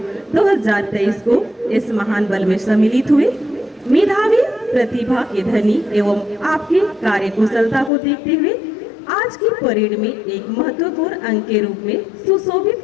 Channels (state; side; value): drops out; right; at 7.9 s